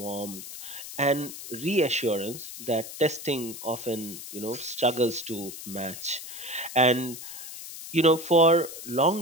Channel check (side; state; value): left; noise; hiss, 11 dB below the sound